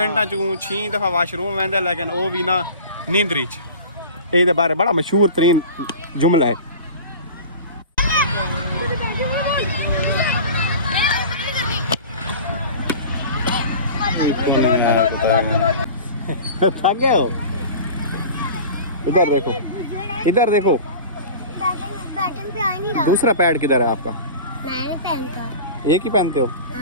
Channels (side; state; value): both; inverted; correlation -0.37